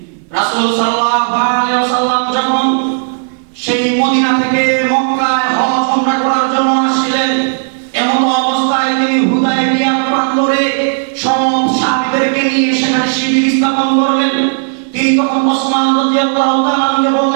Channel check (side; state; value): left; silent; digital silence